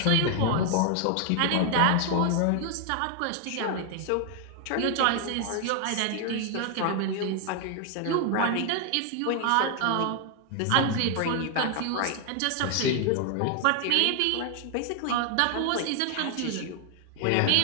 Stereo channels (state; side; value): different; both; correlation 0.00